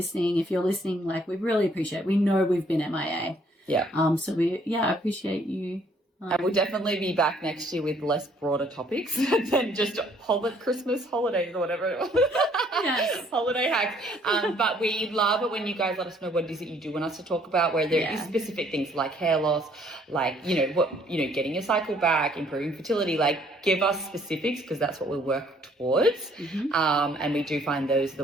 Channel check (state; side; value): normal; both; correlation 0.63